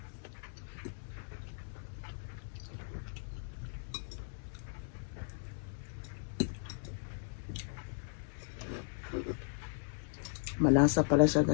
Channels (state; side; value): silent; right; 53 dB below the other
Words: Malasa pala siya